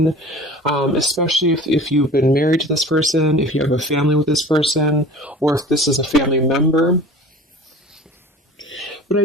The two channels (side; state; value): both; normal; correlation 0.41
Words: especially if you've been married to this person, if you have a family with this person, or if this is a family member. But I